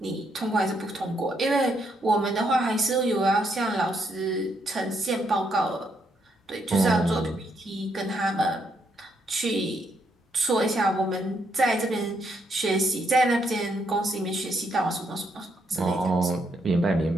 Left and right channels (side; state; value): both; normal; correlation 0.76